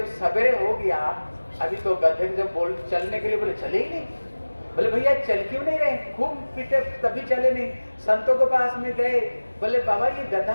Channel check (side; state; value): both; inverted; correlation -1.00